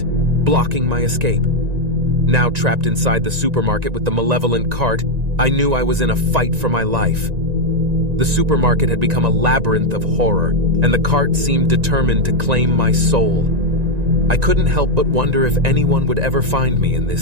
blocking my escape. Now trapped inside the supermarket with the malevolent cart, I knew I was in a fight for my life. The supermarket had become a labyrinth of horror, and the cart seemed determined to claim my soul. I couldn't help but wonder if anyone would ever find me in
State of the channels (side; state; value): left; late; 1.9 ms